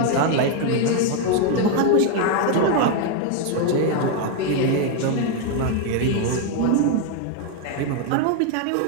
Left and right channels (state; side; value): different; both; correlation 0.01